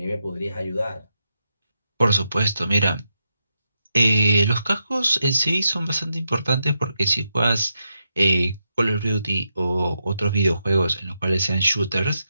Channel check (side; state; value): both; inverted; correlation -0.84